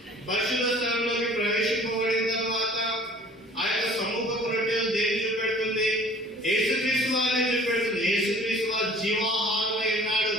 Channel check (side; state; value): both; normal; correlation 0.50